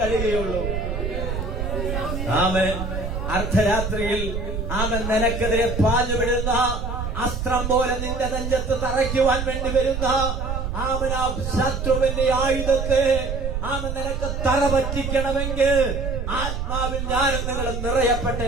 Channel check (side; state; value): right; noise; rumble, 3 dB below the sound